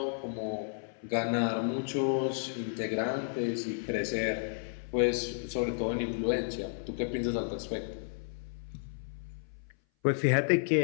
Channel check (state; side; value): silent; right; 56 dB below the other